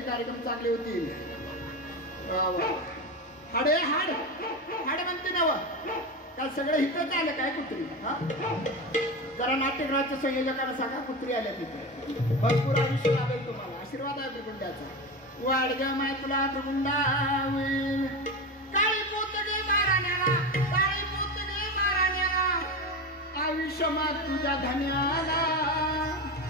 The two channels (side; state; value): both; normal; correlation 0.22